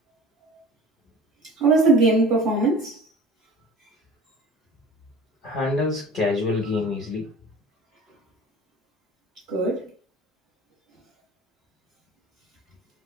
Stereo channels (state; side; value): normal; both; correlation 0.42